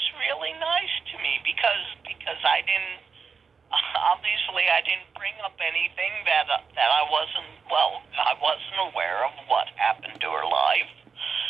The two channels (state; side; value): quieter; left; 5.6 dB